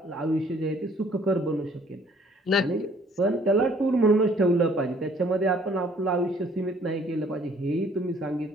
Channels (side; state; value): both; normal; correlation 0.59